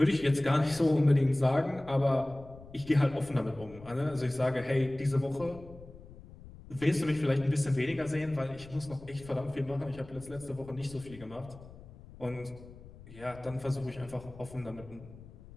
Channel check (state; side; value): noise; left; rumble, 18 dB below the sound